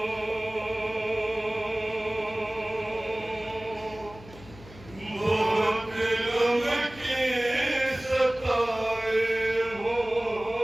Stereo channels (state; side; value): noise; left; hum, 19 dB below the sound